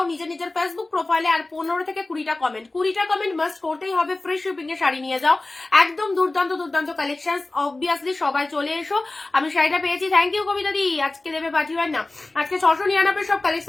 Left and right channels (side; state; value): right; quieter; 3.0 dB